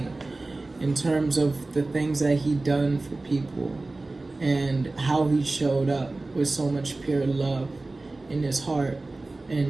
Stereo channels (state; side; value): quieter; left; 3.1 dB